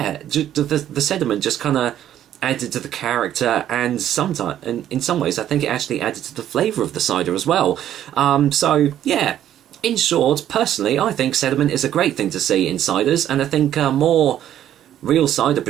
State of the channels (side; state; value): left; quieter; 11.3 dB